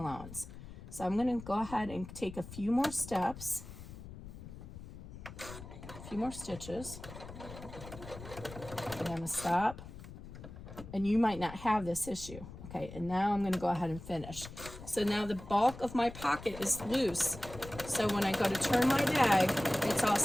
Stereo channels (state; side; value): noise; left; rumble, 13 dB below the sound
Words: So I'm going to go ahead and take a few more steps, a few more stitches. I'm going to stop. And you might not have this issue. Okay, and now I'm going to go ahead and finish. So now the bulk of my pocket is loose. So when I go to turn my bag, it's all